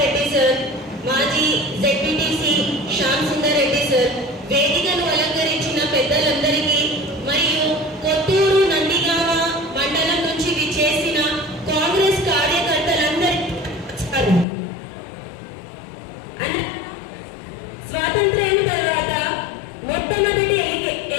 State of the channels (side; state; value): right; drops out; at 14.5 s